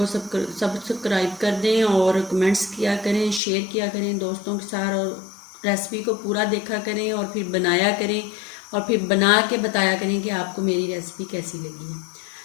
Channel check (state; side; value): drops out; right; at 3.4 s